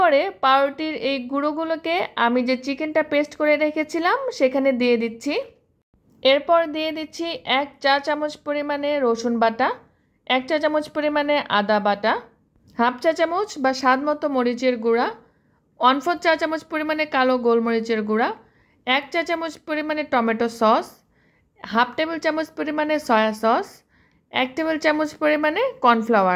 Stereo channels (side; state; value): both; identical; correlation 1.00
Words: পাউরুটির এই গুঁড়োগুলোকে আমি যে চিকেনটা পেস্ট করে রেখেছিলাম সেখানে দিয়ে দিচ্ছি। এরপর দিয়ে দিচ্ছি 1 চা চামচ পরিমাণে রসুন বাটা, 1 চা চামচ পরিমাণে আদা বাটা, হাফ চা চামচ বা স্বাদ মতো মরিচের গুঁড়া, 1/4 চা চামচ পরিমাণে কালো গোলমরিচের গুঁড়া, 1 চা চামচ পরিমাণে টমেটো সস, হাফ টেবিল চামচ পরিমাণে সয়া সস, 1 টেবিল চামচ পরিমাণে